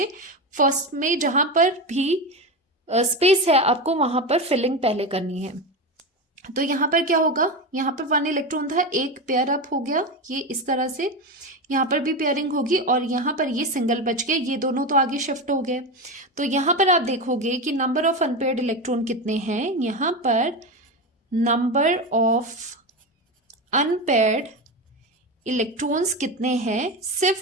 फर्स्ट में जहां पर भी स्पेस है आपको वहां पर फिलिंग पहले करनी है। तो यहाँ पर क्या होगा, यहाँ पर 1 इलेक्ट्रॉन था, एक पेयर अप हो गया, ये इस तरह से, यहाँ पर भी पेयरिंग होगी, और यहाँ पर ये सिंगल बच गए, ये दोनों तो आगे शिफ्ट हो गए। तो यहाँ पर आप देखोगे कि नंबर ऑफ अनपेयर्ड इलेक्ट्रॉन कितने हैं, यहाँ पर नंबर ऑफ अनपेयर्ड इलेक्ट्रॉन्स कितने हैं,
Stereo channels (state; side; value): normal; both; correlation 0.19